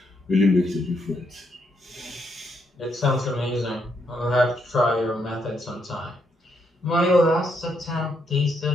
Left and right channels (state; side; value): normal; both; correlation 0.77